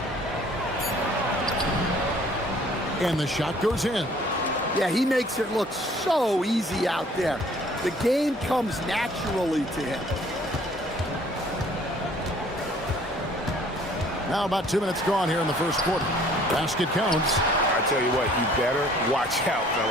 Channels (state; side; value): normal; both; correlation 0.56